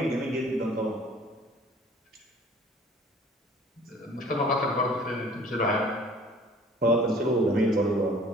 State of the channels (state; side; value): normal; both; correlation 0.51